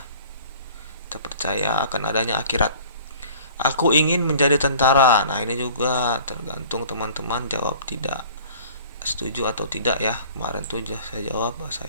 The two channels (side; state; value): both; inverted; correlation -0.48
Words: Kita percaya akan adanya akhirat. Aku ingin menjadi tentara. Nah, ini juga tergantung teman-teman jawab tidak setuju atau tidak ya. Kemarin tuh saya jawab